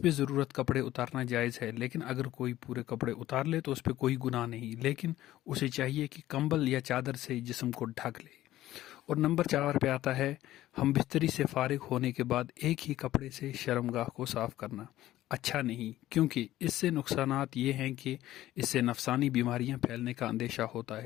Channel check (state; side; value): quieter; right; 14.6 dB